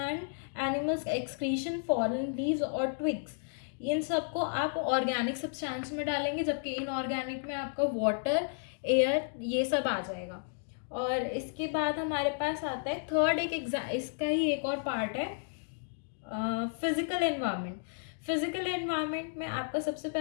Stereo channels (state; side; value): silent; right; digital silence